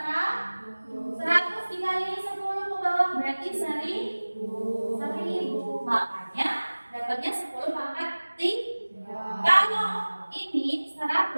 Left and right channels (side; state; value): both; inverted; correlation -1.00